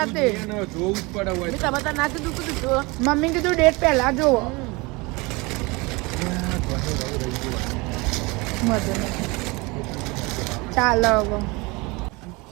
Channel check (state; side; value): quieter; left; 25.4 dB